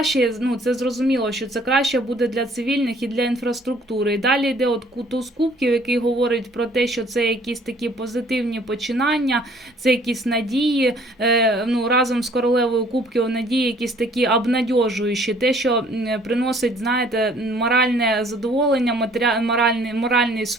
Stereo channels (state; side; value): normal; both; correlation 0.57